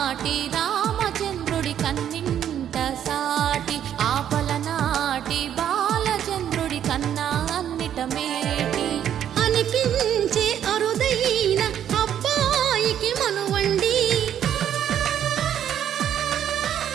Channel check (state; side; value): quieter; left; 10.0 dB